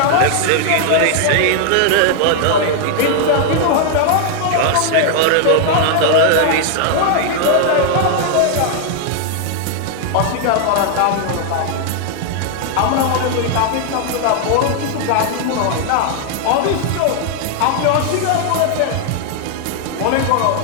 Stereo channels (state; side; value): different; both; correlation 0.00